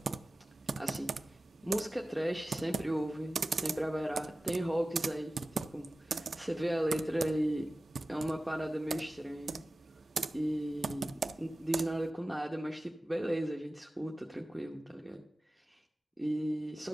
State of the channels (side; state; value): both; normal; correlation 0.96